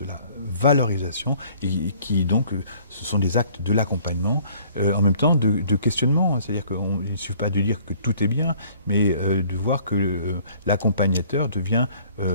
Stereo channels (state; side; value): inverted; both; correlation -0.57